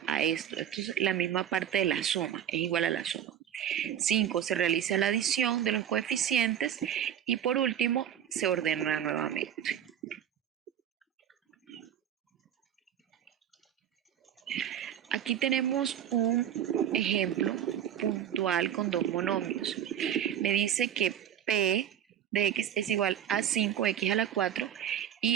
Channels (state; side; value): quieter; left; 9.9 dB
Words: a esto. Esto es la misma parte de la suma, es igual a la suma. 5. Se realiza la adición de los coeficientes y por último se ordena nuevamente. Aquí tenemos un ejemplo puntual con dos monomios. Me dice que P de x es igual a 5x a la 4 y